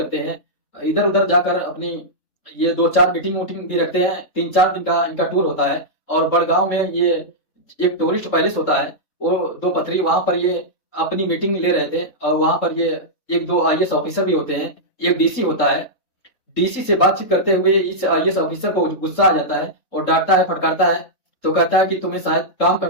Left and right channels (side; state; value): right; late; 3.7 ms